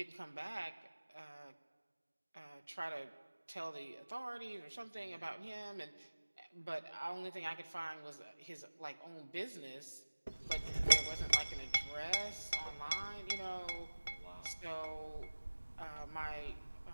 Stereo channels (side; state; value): both; inverted; correlation -1.00